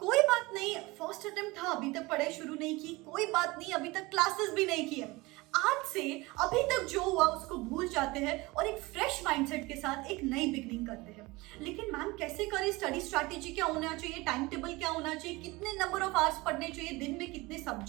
बात नहीं, फर्स्ट अटेम्प्ट था, अभी तक पढ़ाई शुरू नहीं की, कोई बात नहीं, अभी तक क्लासेस भी नहीं किए। आज से अभी तक जो हुआ उसको भूल जाते हैं और एक फ्रेश माइंडसेट के साथ एक नई बिगनिंग करते हैं। लेकिन मैम कैसे करें, स्टडी स्ट्रैटेजी क्या होना चाहिए, टाइम टेबल क्या होना चाहिए, कितने नंबर ऑफ आवर्स पढ़ने चाहिए, दिन में कितने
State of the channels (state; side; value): quieter; left; 22.5 dB